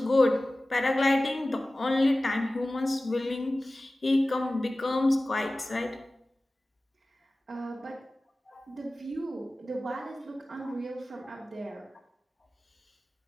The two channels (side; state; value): both; normal; correlation 0.97